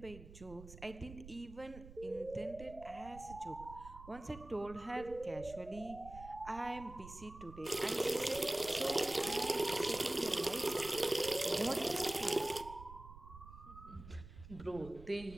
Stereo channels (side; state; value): right; noise; rumble, 15 dB below the sound